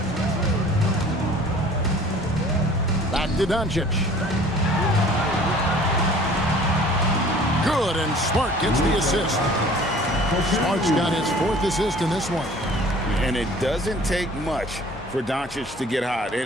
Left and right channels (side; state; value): both; normal; correlation 0.49